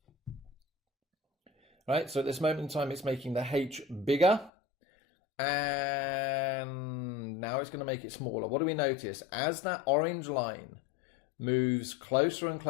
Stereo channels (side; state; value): right; drops out; at 4.5 s